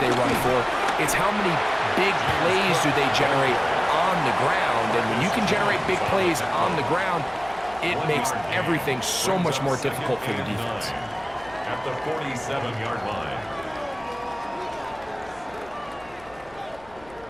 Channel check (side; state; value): left; noise; hum, 25 dB below the sound